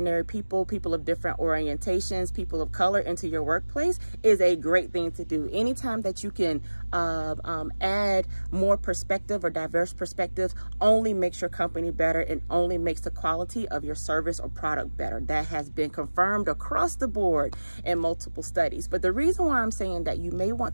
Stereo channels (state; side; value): inverted; both; correlation -1.00